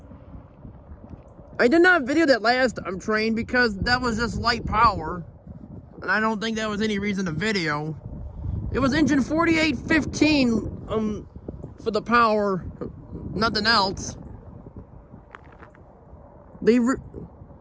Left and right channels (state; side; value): identical; both; correlation 1.00